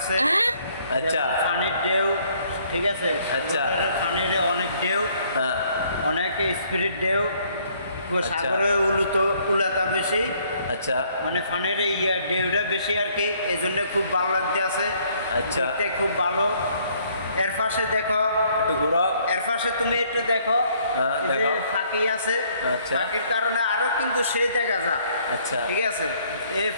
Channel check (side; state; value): both; inverted; correlation -0.64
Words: আচ্ছা, পানির ঢেউ, ঠিক আছে। আচ্ছা, পানির অনেক ঢেউ, হ্যাঁ, অনেক স্পিরিট ঢেউ। সাগরে উলাতা বেশি, আচ্ছা, মানে পানির ঢেউটা বেশি আর কি, এই জন্য খুব ভালো লাগতেছে। আচ্ছা, দেখতে খুব ভালো। এর পাশে দেখো একটু ঘুরো, এর পাশে তুমি একটু দেখো, দেখো ফাঁকি আছে। আচ্ছা, ফাঁকির কারণে আরো কিন্তু সেই দেখা যায়। আচ্ছা, ঠিক আছে। এই